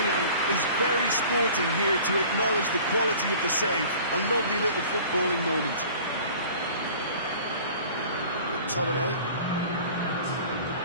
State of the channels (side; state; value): both; inverted; correlation -0.46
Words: is very sporting here to acknowledge the quality of the save. A lovely little footballing moment. McTominay.